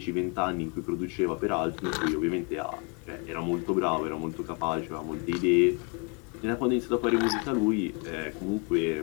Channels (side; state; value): right; quieter; 35.0 dB